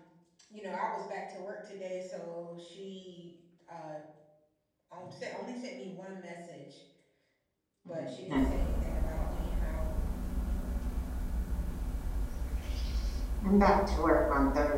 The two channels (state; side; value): identical; both; correlation 1.00